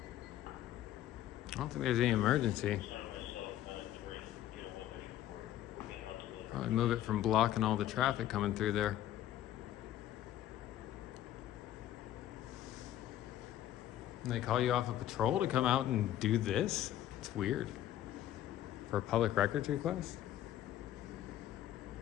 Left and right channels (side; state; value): right; quieter; 12.4 dB